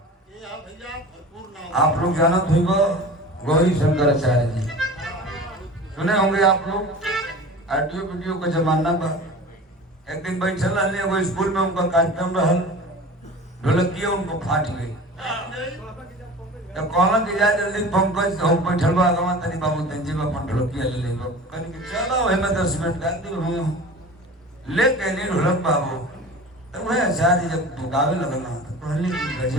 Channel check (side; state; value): both; normal; correlation 0.37